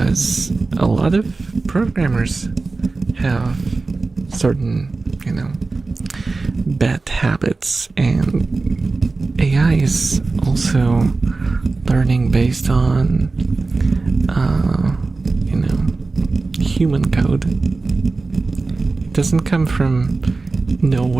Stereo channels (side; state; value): left; quieter; 3.7 dB